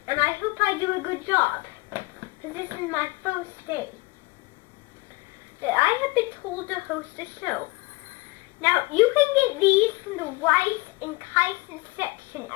And I hope I do a good job, because this is my first day that I have been told to host a show. Now, you can get these from the rice and chitin section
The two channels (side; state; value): right; quieter; 24.4 dB